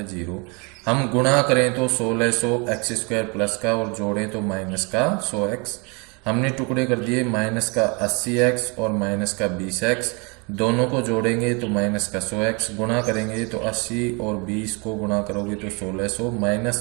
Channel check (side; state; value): left; quieter; 31.4 dB